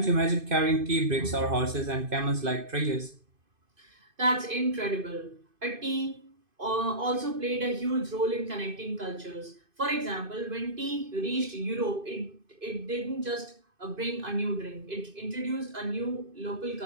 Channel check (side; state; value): left; late; 2.5 ms